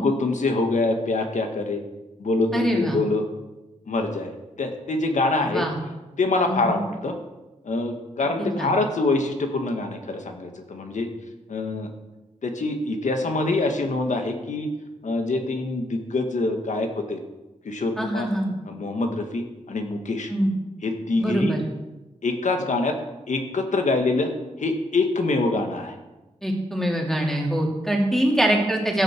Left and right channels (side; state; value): both; normal; correlation 0.67